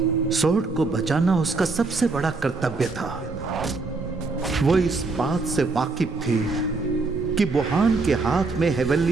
सोर्ड को बचाना उसका सबसे बड़ा कर्तव्य था। वो इस बात से वाकिफ थी कि बुहान के हाथ में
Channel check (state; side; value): quieter; left; 3.8 dB